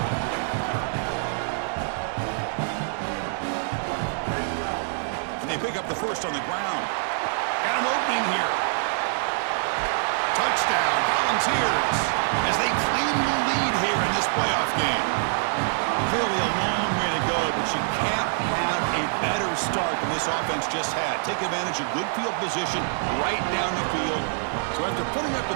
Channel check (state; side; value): silent; left; digital silence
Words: And they pick up the first on the ground. Got an opening here. Touchdown, Volunteers, as they claim the lead here in this playoff game. Clearly a long way to go, but you can't have a better start than this offense just had. Take advantage of good field position right down the field. So after putting up